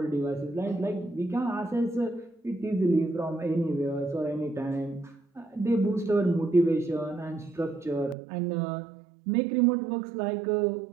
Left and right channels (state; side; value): drops out; left; at 8.2 s